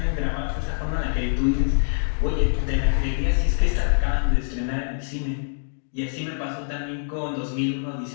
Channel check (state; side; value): silent; right; 58 dB below the other